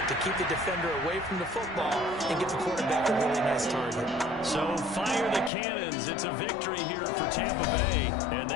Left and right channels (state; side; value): drops out; right; at 5.5 s